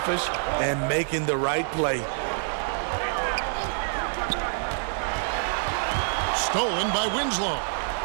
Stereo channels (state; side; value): silent; left; 61 dB below the other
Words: and making the right play. Stolen by Winslow.